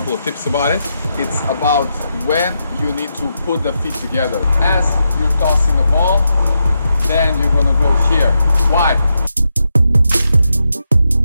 of tips about it. It's about when you need to put the feet together. As you're tossing the ball, then you're going to go here. Why?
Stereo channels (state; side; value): inverted; both; correlation -0.85